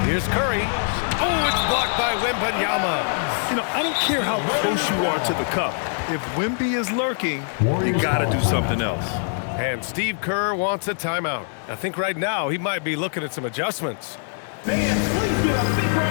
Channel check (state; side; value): silent; right; 63 dB below the other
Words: Here's Curry. Oh, it's blocked by Wembanyama. You know, I don't care how close you are to the cup. If Wemby is lurking, you got to do something else. And Steve Kerr wants a timeout. I think right now he might be looking at some adjustments. Fans, please give a big